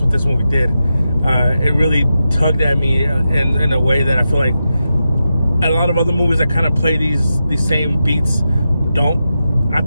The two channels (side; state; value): both; inverted; correlation -0.89